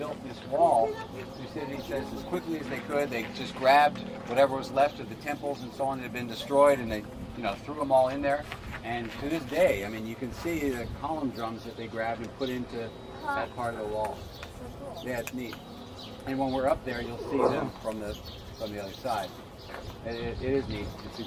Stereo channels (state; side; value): identical; both; correlation 1.00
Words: this wall. Thucydides says as quickly as they could, they just grabbed whatever was left of the temples and so on that had been destroyed, and they, threw them all in there. And to this day, I mean, you can see the column drums that they grabbed and put into that part of the wall. Yeah, it's neat. And when we're up there, you'll see them from the other side. It is neat. It's